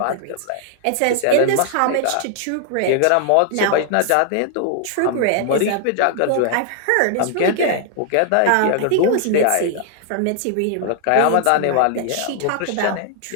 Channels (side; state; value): both; different; correlation 0.00